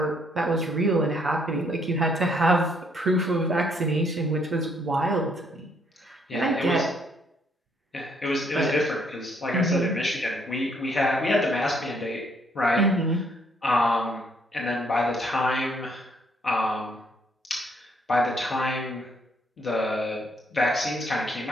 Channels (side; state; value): both; normal; correlation 0.69